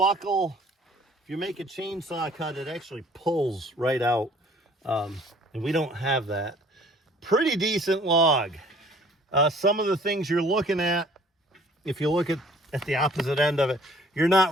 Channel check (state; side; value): normal; both; correlation 0.55